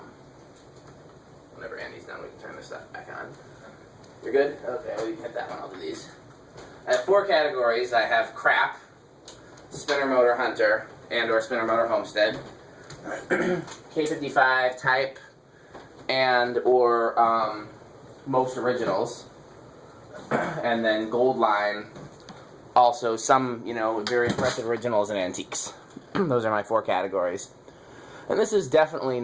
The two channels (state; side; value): identical; both; correlation 1.00